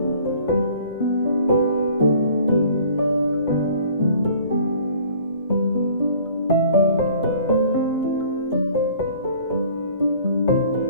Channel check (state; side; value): inverted; both; correlation -0.52